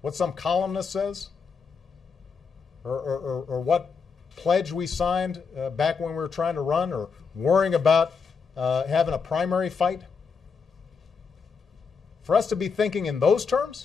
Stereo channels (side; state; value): right; quieter; 5.5 dB